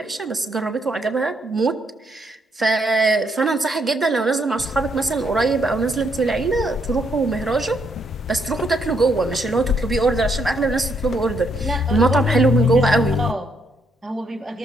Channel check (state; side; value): normal; both; correlation 0.74